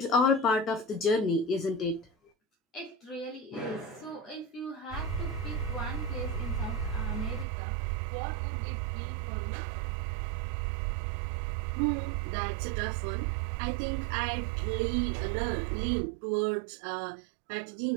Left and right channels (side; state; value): left; drops out; at 7.5 s